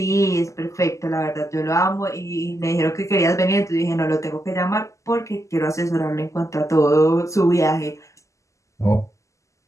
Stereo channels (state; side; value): late; right; 0.15 ms